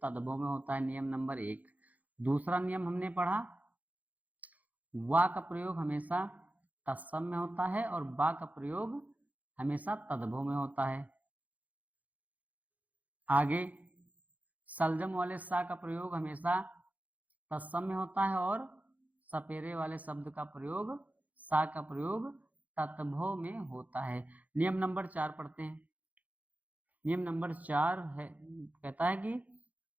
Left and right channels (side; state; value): left; late; 0.077 ms